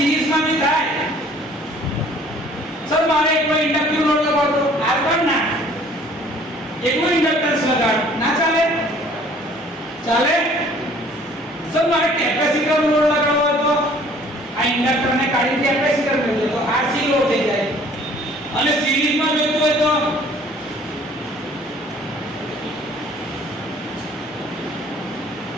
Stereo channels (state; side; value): normal; both; correlation 0.55